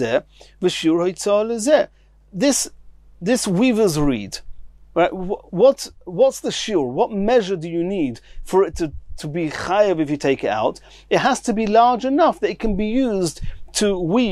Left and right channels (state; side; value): identical; both; correlation 1.00